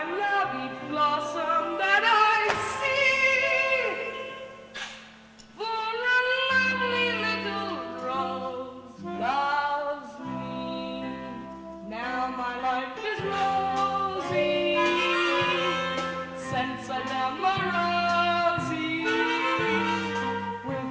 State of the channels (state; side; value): identical; both; correlation 1.00